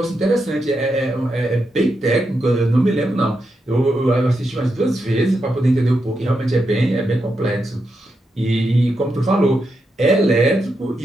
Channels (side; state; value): both; normal; correlation 0.85